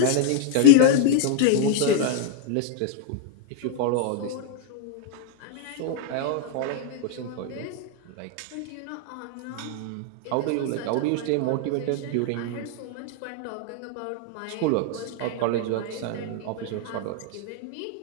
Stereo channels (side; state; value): both; different; correlation 0.00